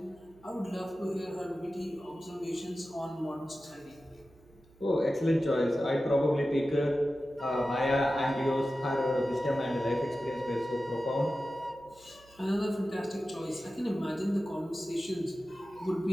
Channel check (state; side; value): noise; right; hum, 27 dB below the sound